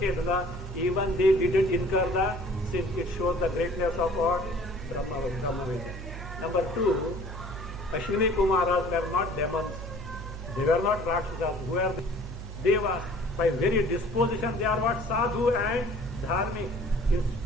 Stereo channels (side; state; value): both; normal; correlation 0.51